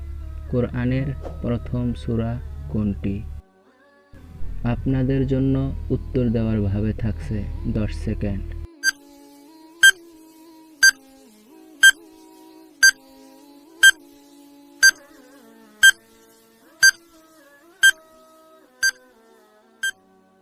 কোরআনের প্রথম সূরা কোনটি? আপনাদের জন্য উত্তর দেওয়ার ভাবে থাকছে 10 সেকেন্ড।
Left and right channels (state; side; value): identical; both; correlation 1.00